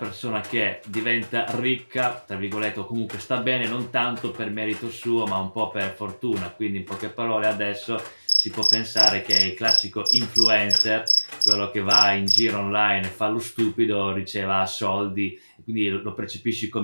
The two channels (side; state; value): both; inverted; correlation -1.00